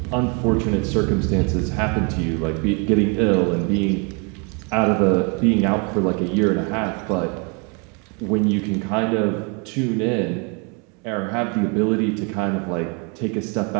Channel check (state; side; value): quieter; left; 34.2 dB